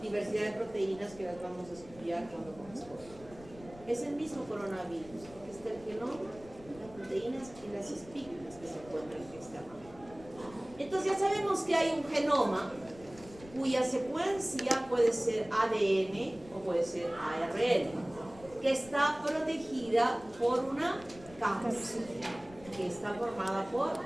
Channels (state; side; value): noise; left; rumble, 20 dB below the sound